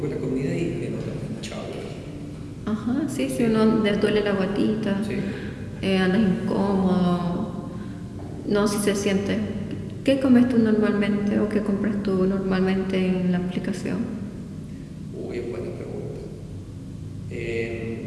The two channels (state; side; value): identical; both; correlation 1.00